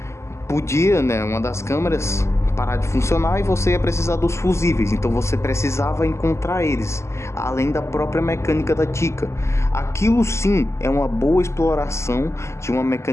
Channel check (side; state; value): right; late; 0.13 ms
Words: podia, né, uma das câmeras parar de funcionar e você ia precisar dos fusíveis, então você precisava encontrar eles, além da própria mecânica da Chica. Aquilo sim é uma boa exploração de uma